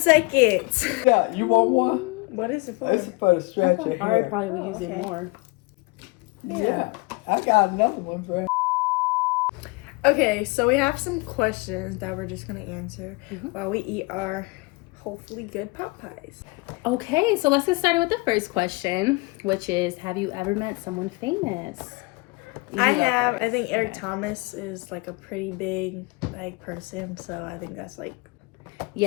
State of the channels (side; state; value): right; quieter; 26.1 dB